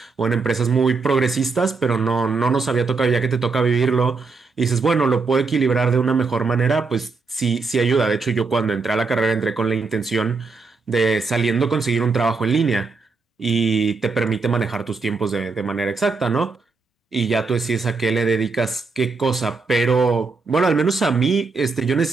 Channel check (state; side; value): quieter; left; 4.3 dB